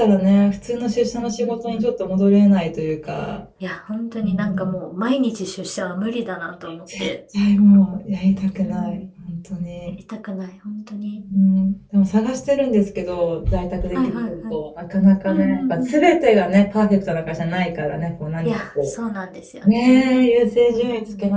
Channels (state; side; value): identical; both; correlation 1.00